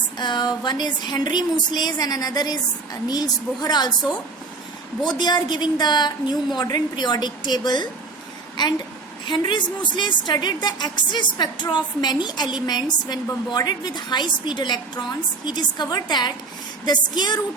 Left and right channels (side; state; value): left; quieter; 4.0 dB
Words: one is Henry Moseley and another is Niels Bohr also. Both they are giving the new modern periodic table, and Henry Moseley studied the X-ray spectra of many elements when bombarded with high-speed electrons. He discovered that the square